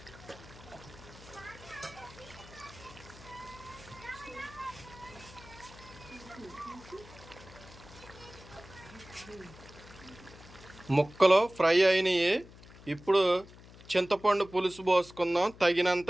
ముక్కలు ఫ్రై అయినాయి. ఇప్పుడు చింతపండు పులుసు పోసుకుందాం, తగినంత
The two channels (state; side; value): noise; left; hum, 20 dB below the sound